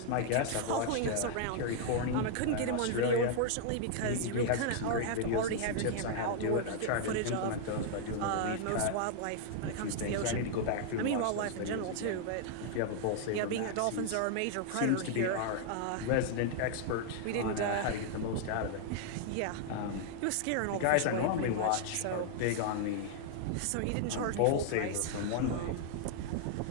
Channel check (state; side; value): different; both; correlation -0.01